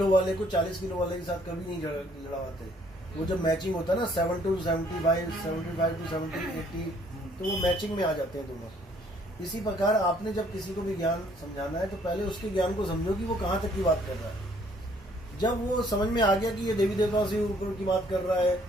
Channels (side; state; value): both; normal; correlation 0.63